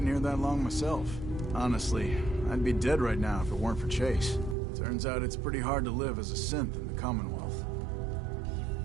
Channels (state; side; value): drops out; left; at 4.5 s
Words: here that long myself. Honestly, I'd be dead right now if it weren't for Chase. Turns out it's pretty hard to live as a synth in the Commonwealth.